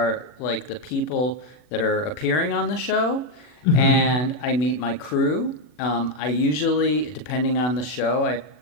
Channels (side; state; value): right; late; 40 ms